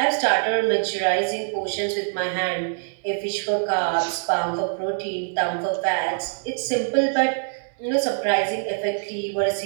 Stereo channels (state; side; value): silent; left; digital silence